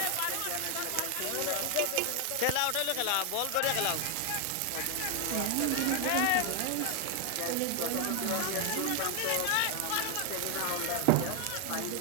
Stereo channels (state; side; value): different; both; correlation 0.00